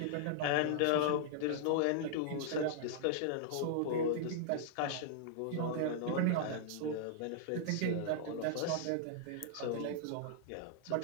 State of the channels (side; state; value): both; different; correlation -0.01